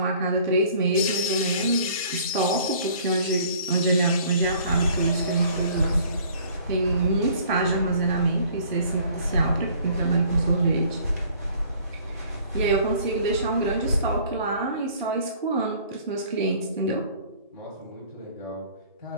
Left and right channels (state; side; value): inverted; both; correlation -0.54